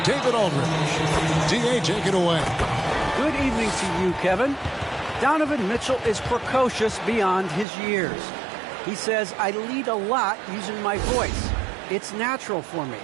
David Aldridge. D.A., take it away. Good evening to you, Kevin. Donovan Mitchell is precocious beyond his years. He says, I lead a lot using my voice. It's natural for me.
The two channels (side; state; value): left; drops out; at 7.7 s